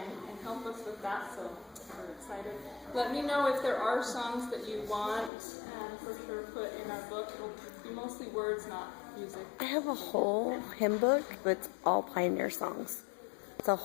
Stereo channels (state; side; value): drops out; right; at 5.3 s